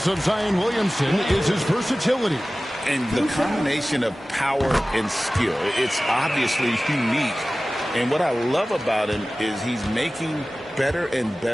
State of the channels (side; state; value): both; normal; correlation 0.97